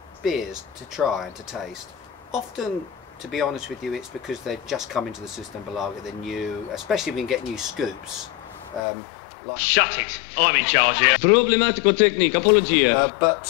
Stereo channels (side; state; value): right; drops out; at 8.8 s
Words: beers to try and to taste? Often, to be honest with you, it's because they've just come into the system below, they're new, especially when we get new scoops. Like, shut it! I'm in charge here. Problematico technique, apologia.